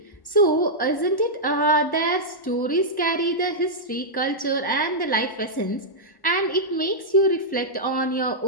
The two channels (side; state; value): right; late; 1.1 ms